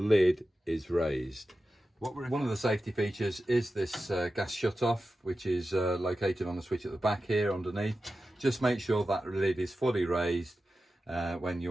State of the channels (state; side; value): normal; both; correlation 0.93